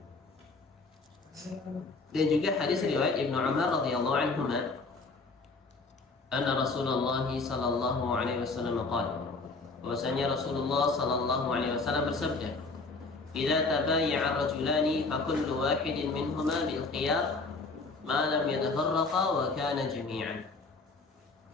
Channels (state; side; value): quieter; right; 3.8 dB